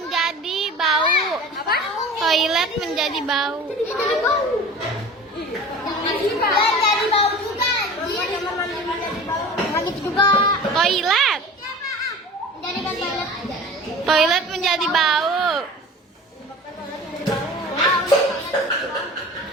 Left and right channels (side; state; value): both; normal; correlation 0.39